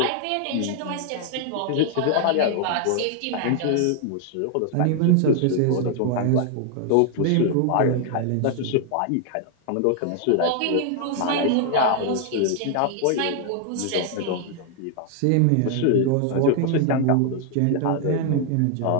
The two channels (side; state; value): both; different; correlation 0.00